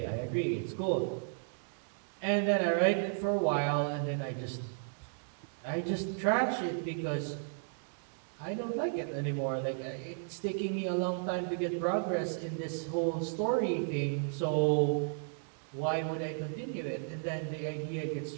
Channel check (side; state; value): left; silent; digital silence